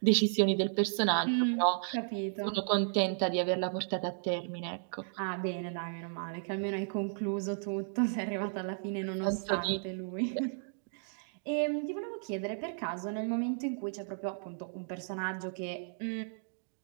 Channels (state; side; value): silent; left; digital silence